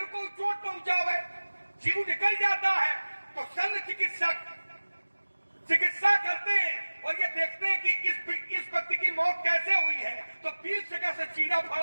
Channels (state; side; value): inverted; both; correlation -1.00